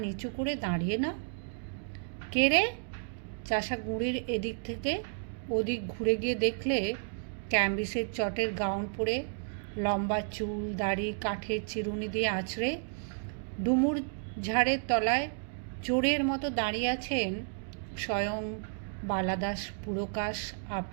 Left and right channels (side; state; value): left; silent; digital silence